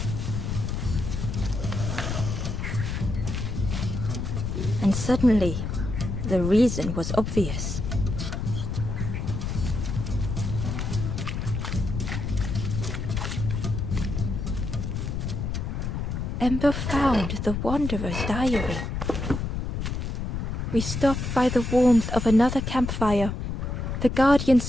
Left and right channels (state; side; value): noise; left; rumble, 3 dB below the sound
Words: And suddenly, the reason was obvious. Ember found the Wanderer's diary. We stop by the warmth of another campfire. The guardian